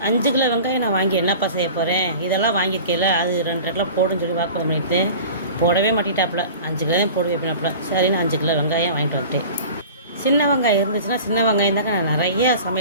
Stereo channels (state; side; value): inverted; both; correlation -0.39